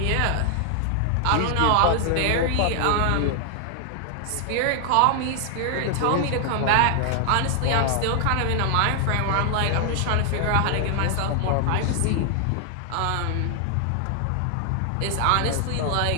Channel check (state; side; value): different; both; correlation 0.00